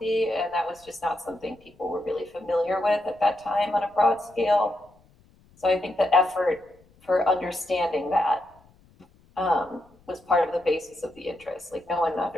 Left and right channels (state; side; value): noise; left; rumble, 30 dB below the sound